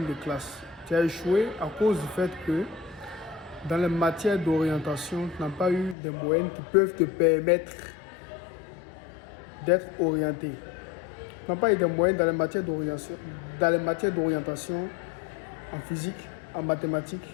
de classe. Tu as échoué à cause du fait que dans les matières d'orientation, tu n'as pas eu des moyennes qui peuvent te permettre d'être orienté. Tu n'as pas eu des moyennes dans les matières d'orientation, en physique, en mathématiques,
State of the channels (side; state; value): right; drops out; at 6.0 s